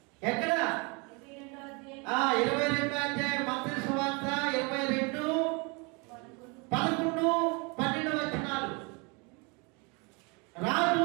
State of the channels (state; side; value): quieter; left; 30.5 dB